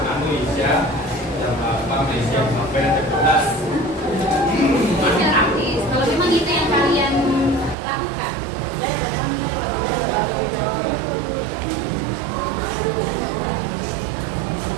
Isya jam 8 Malaysia sampai jam 12. Ini artis. Kalau memang itu yang kalian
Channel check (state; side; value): drops out; left; at 7.8 s